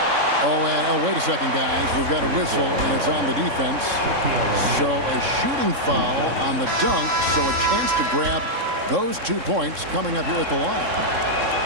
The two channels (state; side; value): late; left; 3.6 ms